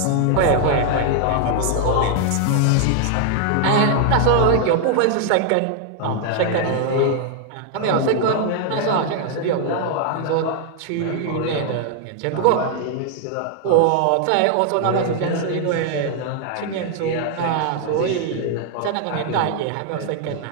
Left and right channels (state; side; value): different; both; correlation 0.00